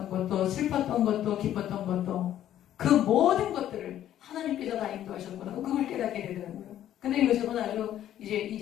것도 슬펐던 것도 기뻤던 것도 그 모든 것들을 하나님께서 다 인도하셨구나. 그걸 깨닫게 되더라고요. 근데 요즘은 아주 이제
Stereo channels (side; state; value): right; quieter; 11.7 dB